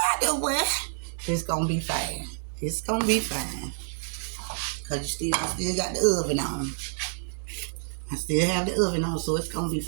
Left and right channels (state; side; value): silent; left; digital silence